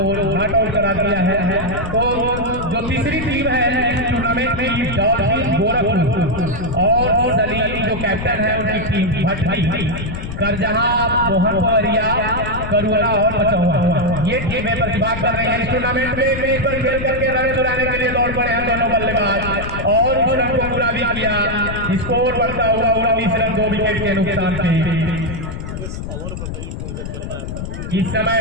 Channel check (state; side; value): noise; left; rumble, 7 dB below the sound